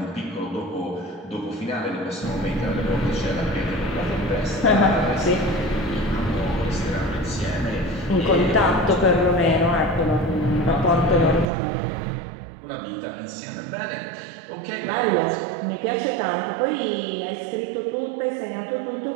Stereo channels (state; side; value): drops out; left; at 11.5 s